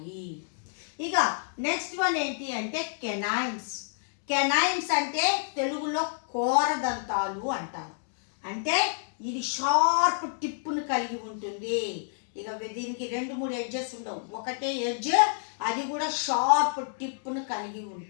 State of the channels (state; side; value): silent; right; digital silence